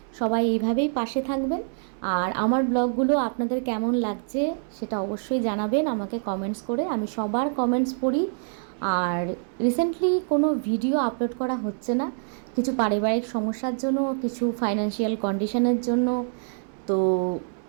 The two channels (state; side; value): silent; left; 61 dB below the other